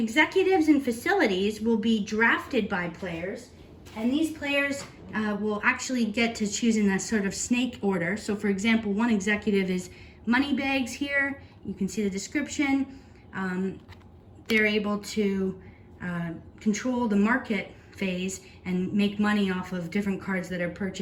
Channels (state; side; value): identical; both; correlation 1.00